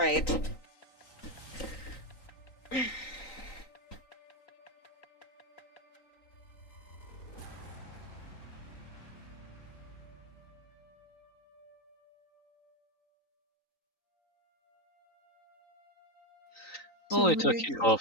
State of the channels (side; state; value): right; late; 3.9 ms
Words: Only took you